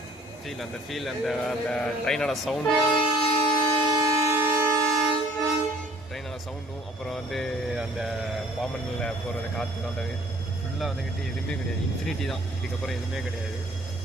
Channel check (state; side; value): normal; both; correlation 0.55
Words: ஃபீல், அந்த ட்ரெயினோட சவுண்டும் அப்புறம் வந்து அந்த பாமனில் போகிறது காற்று அந்த ஃபுல்லாக வந்துக்கிட்டு எதுவுமே கிடையாது. இன்ஃபினிட்டி தான், இதுக்கப்புறம் எதுவுமே கிடையாது.